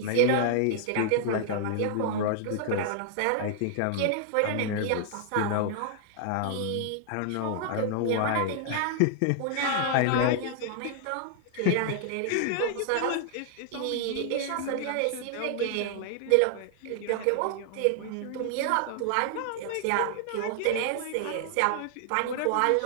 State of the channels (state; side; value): different; both; correlation 0.00